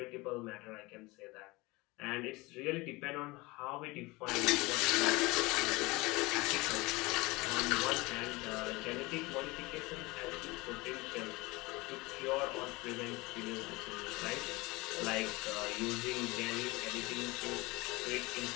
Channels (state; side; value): quieter; right; 23.1 dB